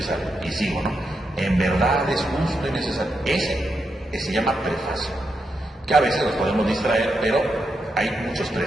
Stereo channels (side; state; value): both; normal; correlation 0.84